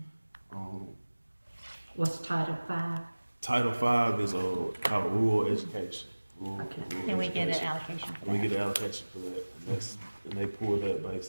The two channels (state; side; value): inverted; both; correlation -1.00